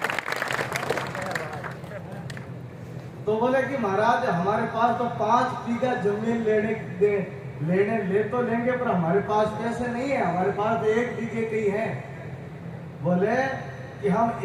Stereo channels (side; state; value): both; identical; correlation 1.00